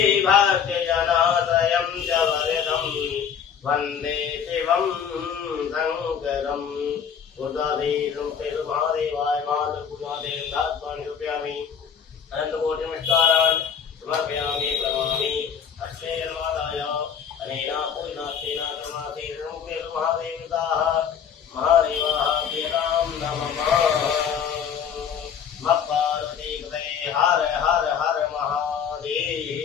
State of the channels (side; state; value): right; quieter; 7.6 dB